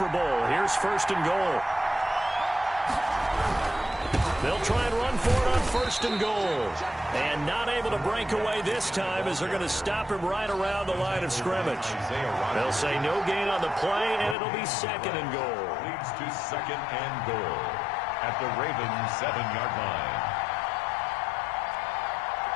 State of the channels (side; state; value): right; drops out; at 14.4 s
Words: Bowl. Here's 1st and goal. They'll try and run for it on 1st and goal. And not able to break away this time as they're going to stop him right around the line of scrimmage. They'll say no gain on the play, and it'll be 2nd and goal. Leads to 2nd and goal at the Ravens 7-yard line.